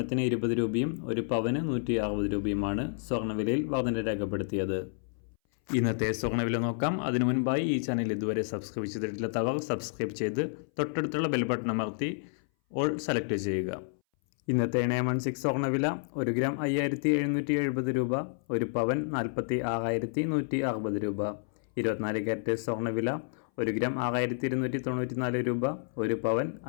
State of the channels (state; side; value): silent; right; 58 dB below the other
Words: 20 രൂപയും ഒരു പവന് 160 രൂപയുമാണ് സ്വർണ്ണവിലയിൽ വർധന രേഖപ്പെടുത്തിയത്. ഇന്നത്തെ സ്വർണ്ണവില നോക്കാം. അതിനു മുൻപായി ഈ ചാനൽ ഇതുവരെ സബ്സ്ക്രൈബ് ചെയ്തിട്ടില്ലാത്തവർ സബ്സ്ക്രൈബ് ചെയ്ത് തൊട്ടടുത്തുള്ള ബെൽ ബട്ടൺ അമർത്തി ഓൾ സെലക്ട് ചെയ്യുക. ഇന്നത്തെ 916 സ്വർണ്ണവില 1 ഗ്രാം 5770 രൂപ, ഒരു പവൻ 46,160 രൂപ. 24 ക്യാരറ്റ് സ്വർണ്ണവില 1 ഗ്രാം 6294 രൂപ, ഒരു പവൻ